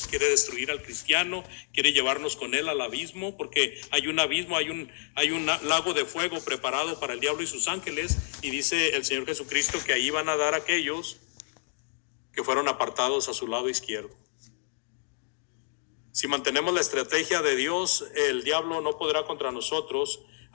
quiere destruir al cristiano, quiere llevarnos con él al abismo, porque hay un abismo, hay un lago de fuego preparado para el diablo y sus ángeles, y dice el Señor Jesucristo que ahí van a dar aquellos que fueron apartados a su lado izquierdo. Si mantenemos la estrategia de Dios, el diablo no podrá contra nosotros,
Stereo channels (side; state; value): right; silent; digital silence